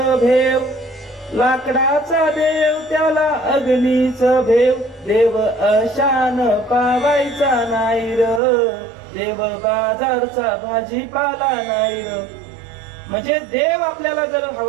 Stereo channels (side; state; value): left; drops out; at 8.4 s